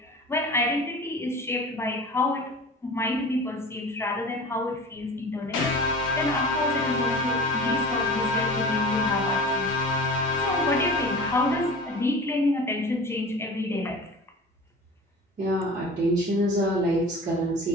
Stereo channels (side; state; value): both; normal; correlation 0.37